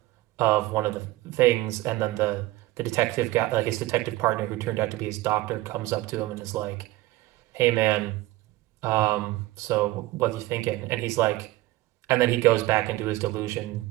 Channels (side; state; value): left; quieter; 18.1 dB